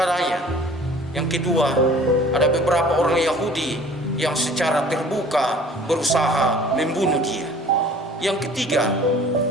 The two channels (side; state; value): both; normal; correlation 0.49